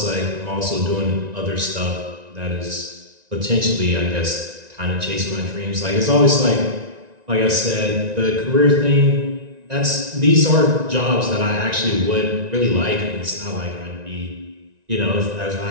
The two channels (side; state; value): left; late; 1.9 ms